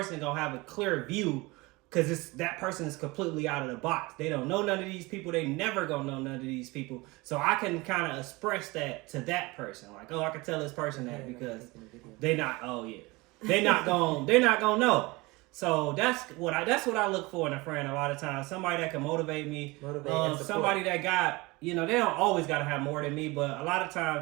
gonna have a clear view because that person is completely out of the box. They don't know none of these people. They never gonna know none of these people. So I can kind of express that to that person. Like, I can tell this person that because they're not gonna know. So that's what I look for in a friend a lot of times. Somebody that can motivate me. Somebody that got, they don't always got to have more than me, but a lot of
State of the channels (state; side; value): quieter; left; 23.3 dB